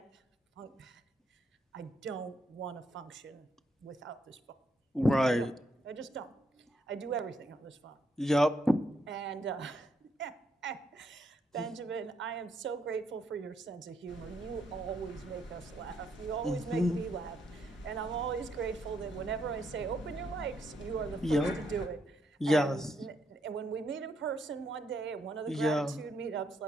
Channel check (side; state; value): both; normal; correlation 0.76